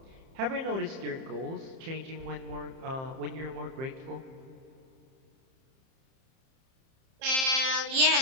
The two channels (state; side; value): late; left; 30 ms